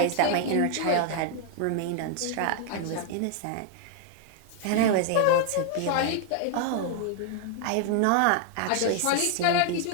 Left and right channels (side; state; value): both; different; correlation 0.00